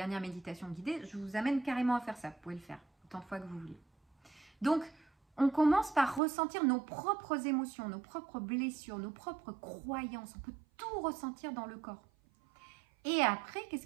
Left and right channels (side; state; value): left; drops out; at 6.2 s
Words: méditation guidée, je vous amène carrément à faire ça. Vous pouvez le faire autant de fois que vous voulez. Donc on commence par ressentir nos propres émotions, nos propres blessures, nos propres croyances. On peut tout ressentir dans le corps. Et après,